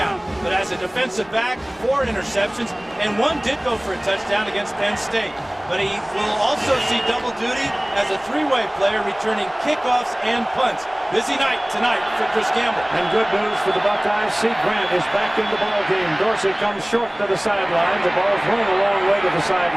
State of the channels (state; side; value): noise; left; rumble, 30 dB below the sound